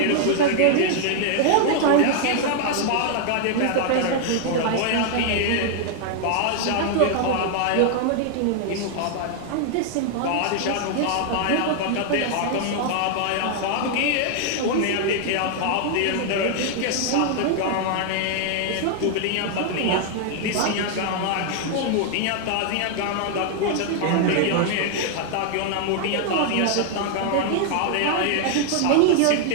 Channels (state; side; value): different; both; correlation 0.00